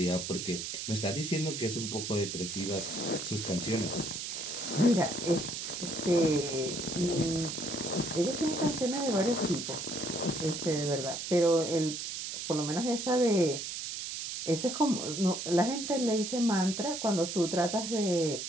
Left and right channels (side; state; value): right; noise; hiss, 5 dB below the sound